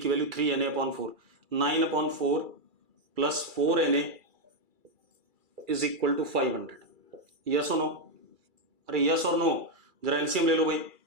की value 3NA upon 4, 9 upon 4 plus 4NA is equal to 500। Yes और नो? अरे यस और नो, जरा एलसीएम ले लो भाई।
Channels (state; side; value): late; left; 2.3 ms